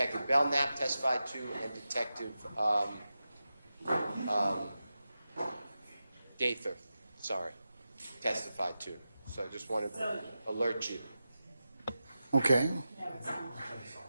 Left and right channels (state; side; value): inverted; both; correlation -0.91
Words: Belknap testified to and Detective Gaither, testified to. So I just want to alert you. Okay.